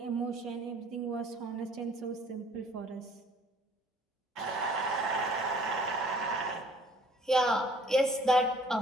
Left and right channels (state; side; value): normal; both; correlation 0.56